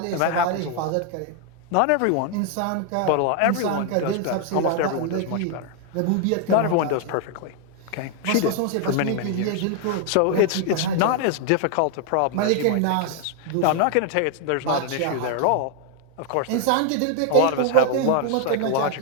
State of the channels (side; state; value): both; different; correlation 0.00